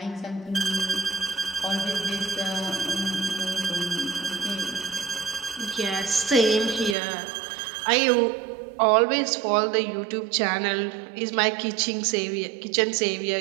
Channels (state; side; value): drops out; left; at 7.0 s